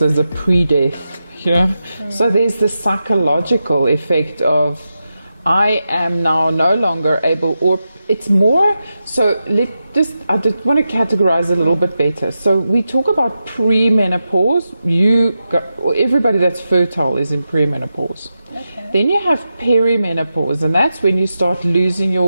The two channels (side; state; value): both; inverted; correlation -0.89